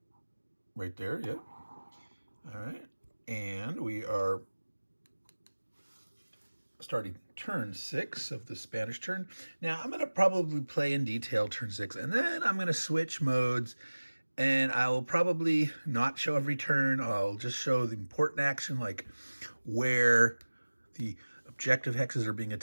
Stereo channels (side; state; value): both; inverted; correlation -1.00